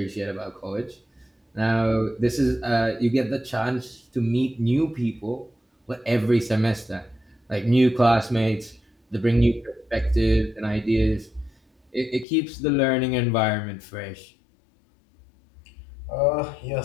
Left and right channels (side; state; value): right; drops out; at 12.2 s